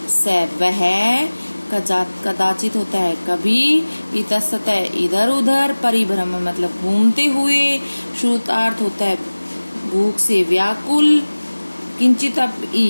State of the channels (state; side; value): inverted; both; correlation -1.00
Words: स वह, कदाचित होता है कभी, इतस्त इधर उधर, परिभ्रमण मतलब घूमते हुए, श्रुतार्थ होता है भूख से व्याकुल, किंचित अपि